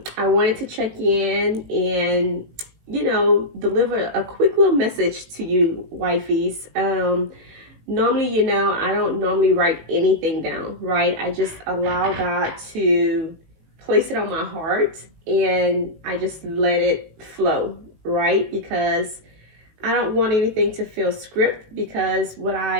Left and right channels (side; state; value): left; late; 18 ms